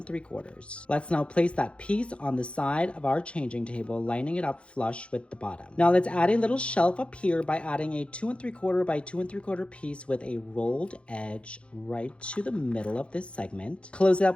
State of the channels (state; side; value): late; right; 0.059 ms